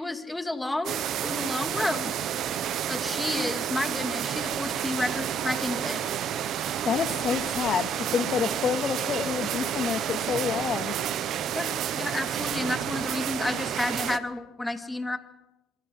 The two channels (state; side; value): normal; both; correlation 0.68